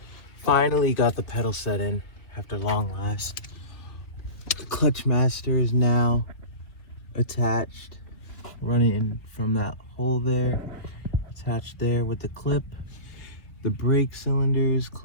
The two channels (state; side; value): late; right; 2.8 ms